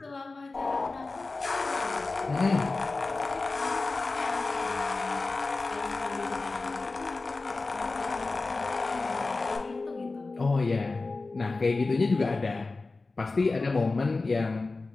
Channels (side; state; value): right; quieter; 3.6 dB